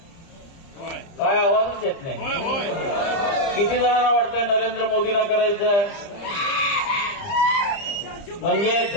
काय आवाजच येत नाही. किती जणांना वाटतंय नरेंद्र मोदींना करायचं आहे? म्हणजे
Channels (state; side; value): late; right; 30 ms